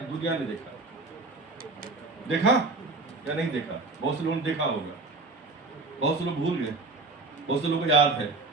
ने देखा या नहीं देखा? बहुत से लोगों ने देखा होगा, बहुत से लोग भूल गए, बहुत से लोगों को याद है,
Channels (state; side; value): quieter; left; 3.5 dB